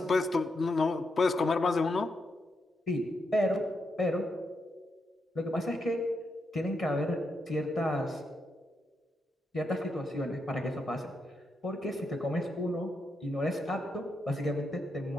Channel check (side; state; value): both; normal; correlation 0.83